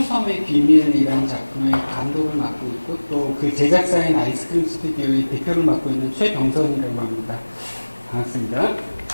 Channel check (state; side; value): inverted; both; correlation -1.00